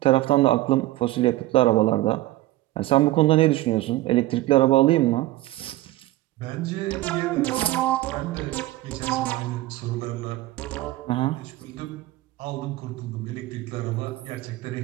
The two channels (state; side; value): quieter; left; 17.1 dB